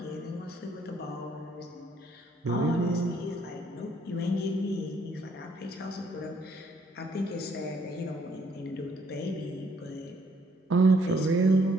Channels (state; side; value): normal; both; correlation 0.67